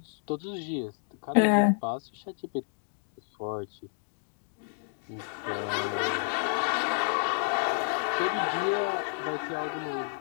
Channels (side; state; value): right; silent; digital silence